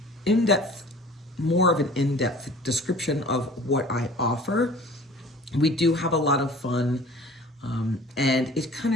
more of an in-depth description of what I offer. We do have a lot of fun, and it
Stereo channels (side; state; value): both; normal; correlation 0.46